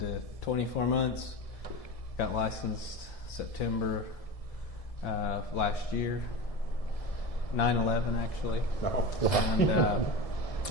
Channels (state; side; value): late; right; 1.7 ms